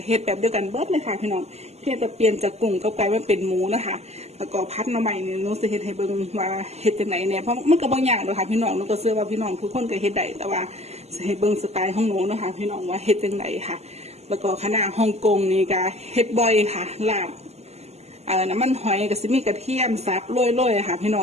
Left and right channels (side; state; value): left; late; 0.31 ms